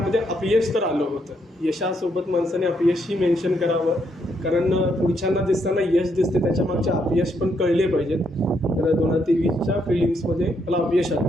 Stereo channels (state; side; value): normal; both; correlation 0.75